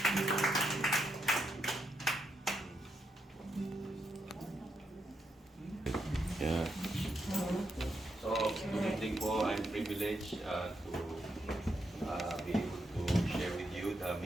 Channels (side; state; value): both; normal; correlation 0.82